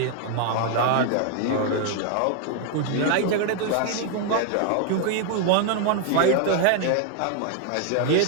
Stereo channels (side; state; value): both; different; correlation 0.00